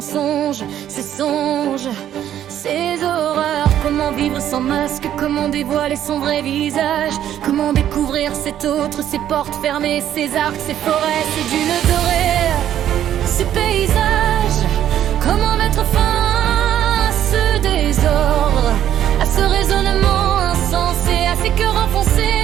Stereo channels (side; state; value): left; quieter; 11.0 dB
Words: ces songes, ces horreurs. Comment vivre sans masque, comment dévoiler son vrai visage, comment découvrir cet autre, ces portes fermées, ces arcs, ces forêts, ces dunes dorées, ces paysages. Comment mettre fin à ce désordre, à ce raisonnement insensé, à ces cœurs enfoncés